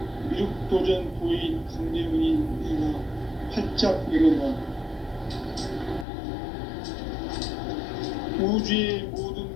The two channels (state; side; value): drops out; right; at 6.1 s